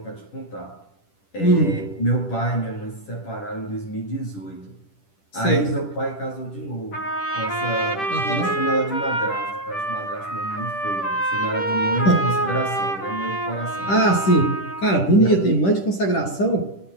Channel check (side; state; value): right; late; 10 ms